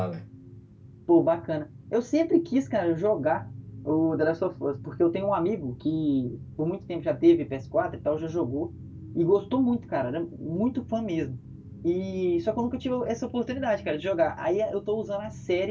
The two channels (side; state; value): both; identical; correlation 1.00